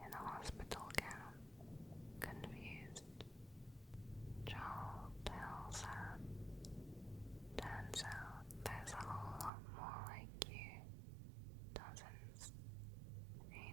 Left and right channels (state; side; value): drops out; left; at 9.5 s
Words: in a hospital gown, confused. Joel tells her, "Turns out there's a whole lot more like you. Dozens.